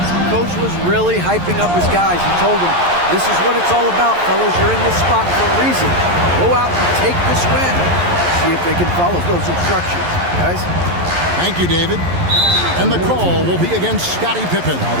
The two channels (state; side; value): late; left; 11 ms